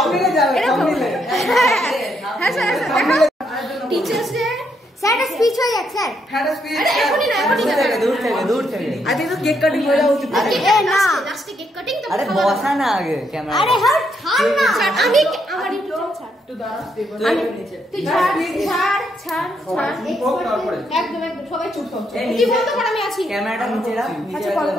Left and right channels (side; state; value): both; normal; correlation 0.76